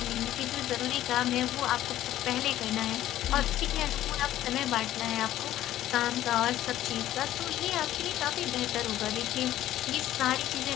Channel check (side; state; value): right; quieter; 13.4 dB